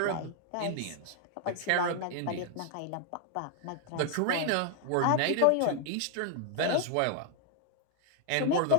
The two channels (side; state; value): both; different; correlation 0.00